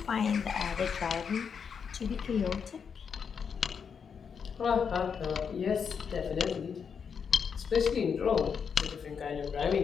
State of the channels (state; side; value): quieter; right; 6.6 dB